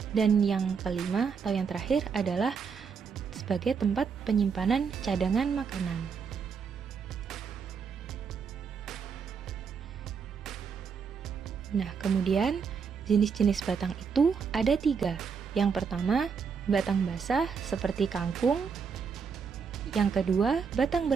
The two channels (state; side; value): quieter; left; 6.1 dB